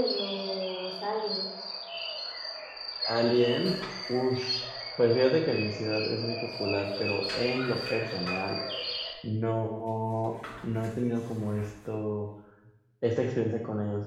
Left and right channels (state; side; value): identical; both; correlation 1.00